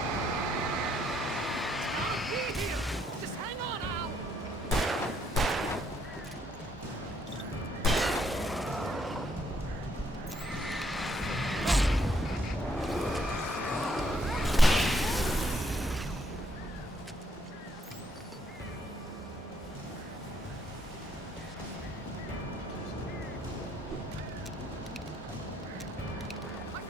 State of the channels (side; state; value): both; normal; correlation 0.71